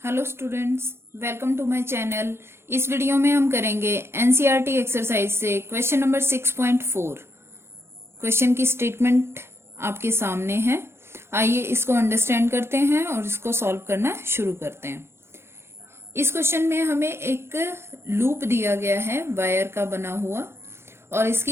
Hello students, welcome to my channel. इस video में हम करेंगे एनसीईआरटी एक्सरसाइज से क्वेश्चन नंबर 6.4। क्वेश्चन की स्टेटमेंट आपके सामने है। आइए इसको अंडरस्टैंड करते हैं और इसको सॉल्व करना शुरू करते हैं। इस क्वेश्चन में हमें एक लूप दिया गया है वायर का बना हुआ और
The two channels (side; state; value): left; late; 0.12 ms